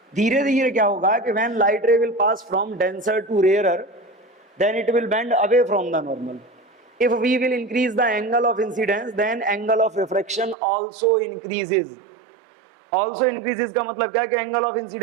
धीरे धीरे क्या होगा कि when light ray will pass from denser to rarer then it will bend away from the normal. If we will increase the angle of incidence, then angle of refraction also increases. Also increases का मतलब क्या है कि angle of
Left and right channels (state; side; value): drops out; left; at 10.6 s